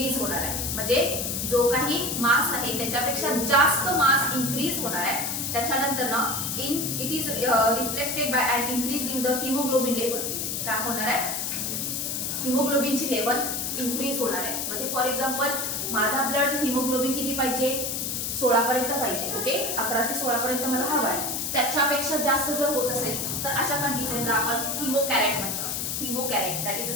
होणार आहे. म्हणजे जो काही मास आहे त्याच्यापेक्षा जास्त मास इन्क्रीज होणार आहे. त्याच्यानंतर ना it is reflected by and increase in the haemoglobin level. काय होणार आहे, हिमोग्लोबिनची लेवल इन्क्रीज होणार आहे. म्हणजे फॉर एक्झाम्पल माझा ब्लड हिमोग्लोबिन किती पाहिजे, 16 पर्यंत पाहिजे. ओके. 11 ते 16 पर्यंत मला हवा आहे. त्याच्यापेक्षा जास्त जर होत असेल तर अशा कंडिशनला आपण हिमोकॅरेट म्हणतो. Hematocrit that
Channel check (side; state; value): left; noise; hiss, 2 dB below the sound